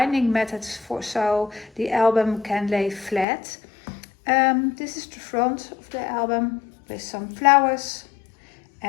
methods so the album can lay flat. This is the front of the album with some flowers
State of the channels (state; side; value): drops out; right; at 3.2 s